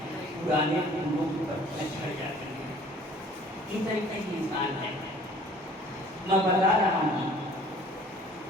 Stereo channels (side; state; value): both; normal; correlation 0.52